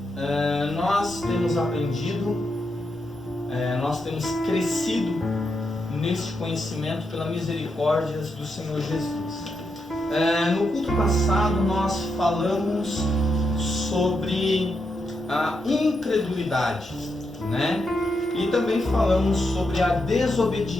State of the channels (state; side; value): normal; both; correlation 0.84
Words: Nós temos aprendido, nós temos crescido neste conhecimento pela misericórdia do Senhor Jesus. No culto passado nós falamos sobre a incredulidade, né? E também falamos sobre a